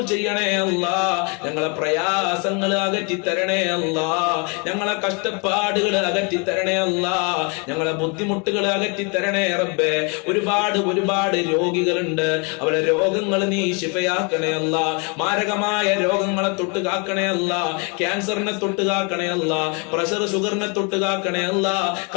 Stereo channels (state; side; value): quieter; right; 33.6 dB